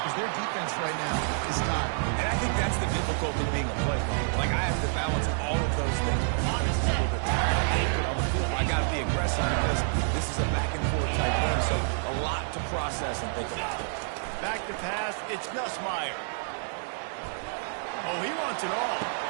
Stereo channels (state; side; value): silent; left; 59 dB below the other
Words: because their defense right now is tired. And I think that's the difficulty being a playmaker. Like, I have to balance all of those things. I'm just a little bit tired. I can't get on the field. I got to be aggressive because this is a back-and-forth type game, so a lot to process and think about. Back to pass, it's Nussmeier. Oh, he wants it all.